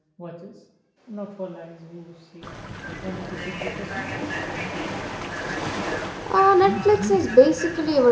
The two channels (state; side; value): identical; both; correlation 1.00